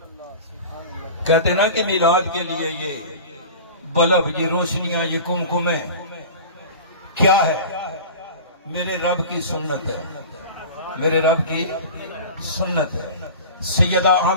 کہتے نا کہ میلاد کے لیے یہ بلب، یہ روشنیاں، یہ کمکمیں کیا ہے؟ میرے رب کی سنت ہے، میرے رب کی سنت ہے۔ سیدہ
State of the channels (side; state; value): both; inverted; correlation -0.36